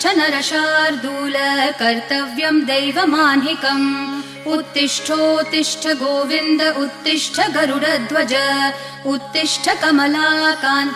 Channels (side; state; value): both; identical; correlation 1.00